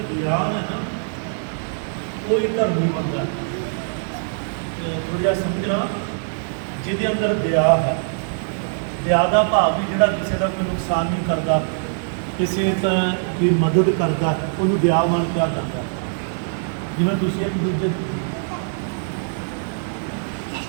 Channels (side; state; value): left; silent; digital silence